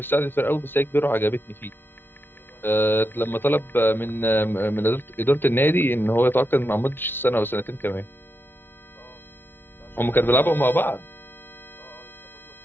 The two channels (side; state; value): right; late; 0.10 ms